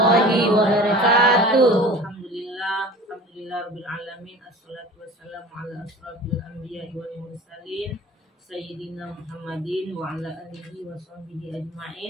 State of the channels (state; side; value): normal; both; correlation 0.40